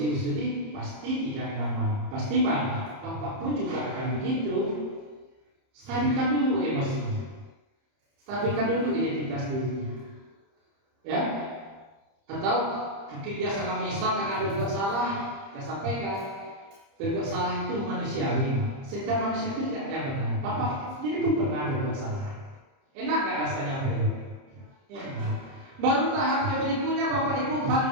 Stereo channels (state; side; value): late; left; 30 ms